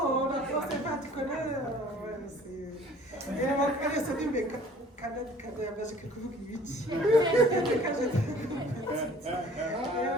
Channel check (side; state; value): both; normal; correlation 0.52